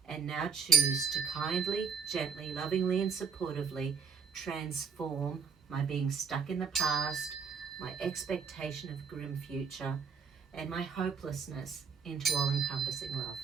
and now choose to kindly, gently, lovingly, and supportively transform my being stuck in the past, my expectation of grim future, and my hopelessness into all-encompassing love.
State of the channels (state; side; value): quieter; left; 6.0 dB